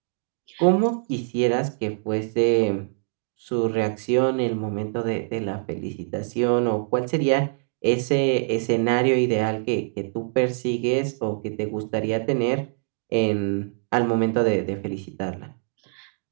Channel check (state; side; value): silent; left; digital silence